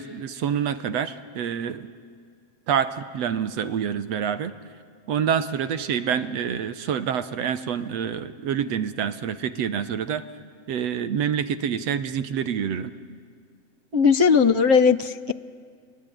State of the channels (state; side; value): late; left; 8.1 ms